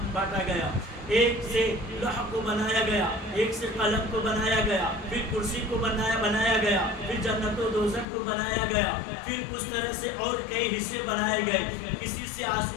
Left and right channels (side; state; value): right; drops out; at 8.1 s